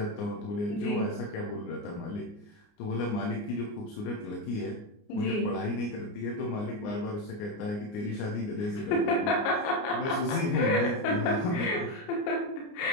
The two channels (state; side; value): late; right; 29 ms